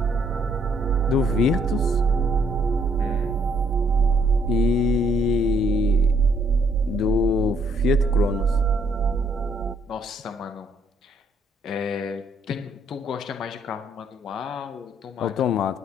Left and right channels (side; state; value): both; normal; correlation 0.69